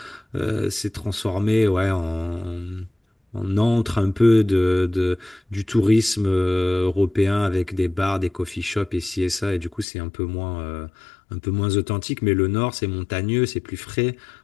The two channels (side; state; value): right; drops out; at 9.9 s